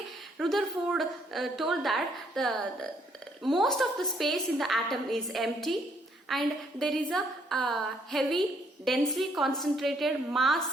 Rutherford told that the most of the space in the atom is empty and there is a heavy densely concentrated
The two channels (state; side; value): normal; both; correlation 0.68